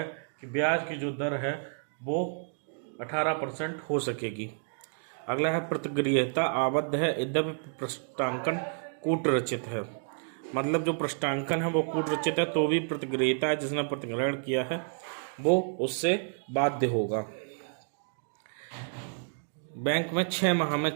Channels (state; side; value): silent; left; 58 dB below the other